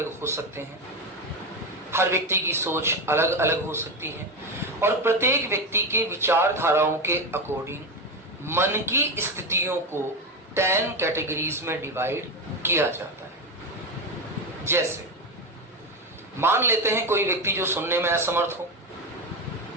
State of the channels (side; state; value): both; normal; correlation 0.15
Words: हो सकते हैं, हर व्यक्ति की सोच अलग अलग हो सकती है और प्रत्येक व्यक्ति के विचारधाराओं के अकॉर्डिंग मन की स्थितियों को 10 कैटेगरीज में डिवाइड किया जाता है। जैसे मान लेते हैं कोई व्यक्ति जो सुनने में असमर्थ हो,